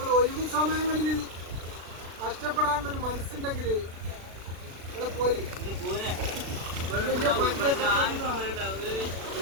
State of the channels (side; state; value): left; late; 36 ms